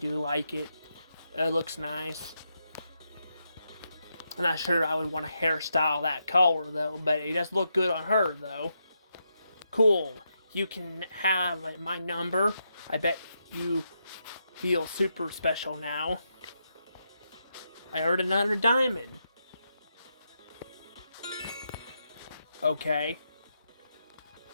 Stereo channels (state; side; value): inverted; both; correlation -0.83